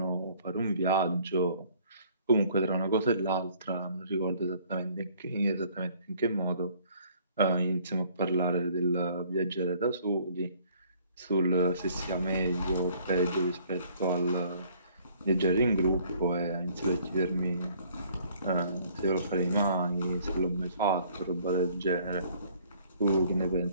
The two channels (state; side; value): inverted; both; correlation -0.58